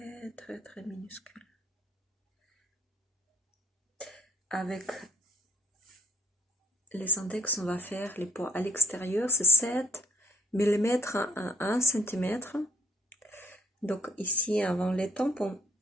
très, très minuscule. Avec les index, on va faire les points à l'extérieur, c'est 7 mm à 1 cm. Donc ici, avant les tempes, on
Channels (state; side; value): normal; both; correlation 0.61